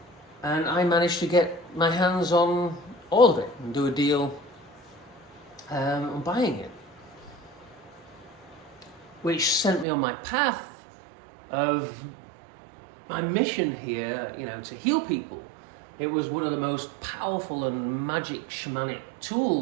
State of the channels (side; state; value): left; drops out; at 9.9 s